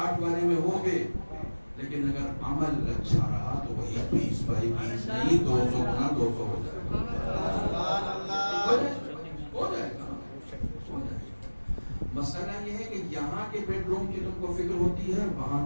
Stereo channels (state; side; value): inverted; both; correlation -1.00